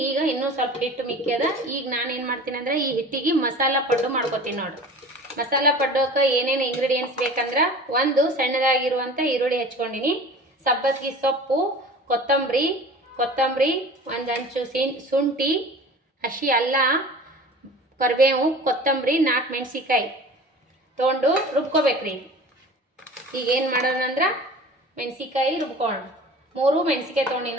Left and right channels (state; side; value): normal; both; correlation 0.40